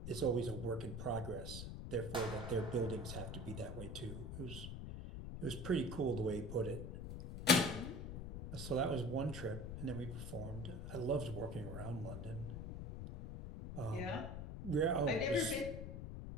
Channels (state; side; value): noise; left; rumble, 6 dB below the sound